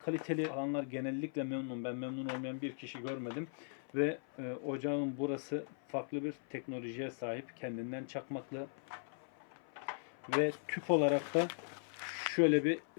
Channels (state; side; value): silent; right; 52 dB below the other